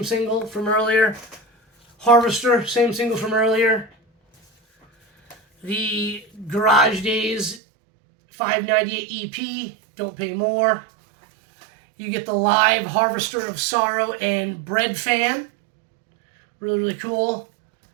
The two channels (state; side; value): drops out; left; at 7.6 s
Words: single from earlier. Harvester, same single from earlier. The Garage Days 598 EP, Don't Pay More. You get the live Harvester of Sorrow and Bread Fan. Really, really cool.